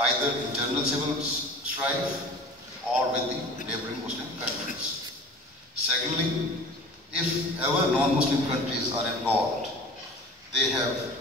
either internal civil strife or with the neighboring Muslim countries. Secondly, if ever non-Muslim countries are involved, they have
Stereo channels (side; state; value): both; normal; correlation 0.42